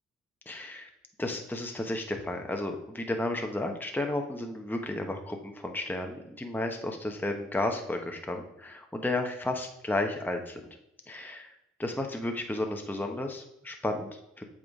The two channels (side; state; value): both; normal; correlation 0.71